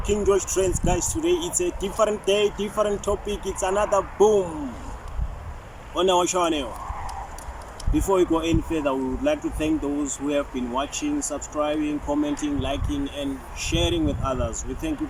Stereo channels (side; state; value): both; identical; correlation 1.00